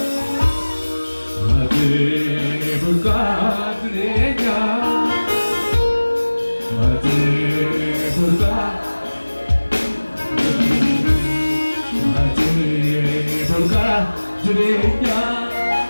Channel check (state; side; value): inverted; both; correlation -1.00